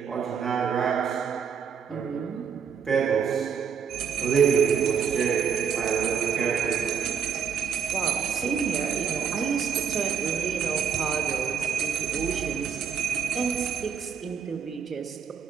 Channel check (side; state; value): left; quieter; 7.2 dB